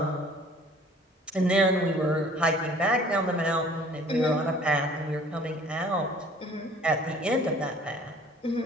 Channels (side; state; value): both; normal; correlation 0.52